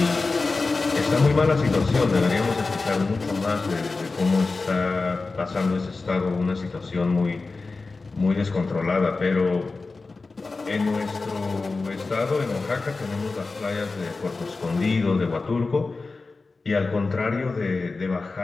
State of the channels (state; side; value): quieter; right; 3.8 dB